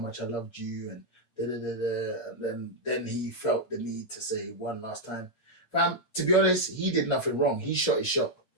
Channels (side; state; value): right; late; 8.6 ms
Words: I loved you, and and then he felt the need to say one last time. Fam, to be honest, he did nothing wrong. He shot his shot.